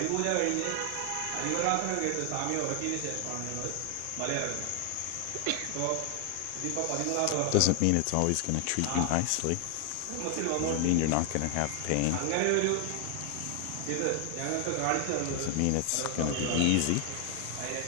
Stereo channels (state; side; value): different; both; correlation 0.00